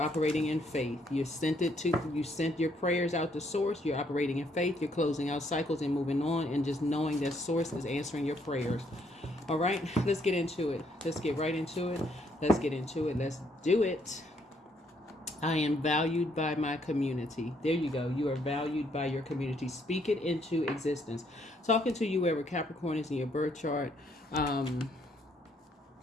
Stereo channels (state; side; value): normal; both; correlation 0.70